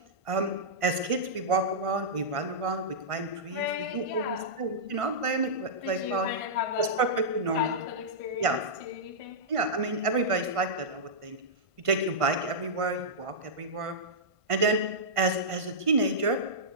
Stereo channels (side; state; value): left; late; 1.5 ms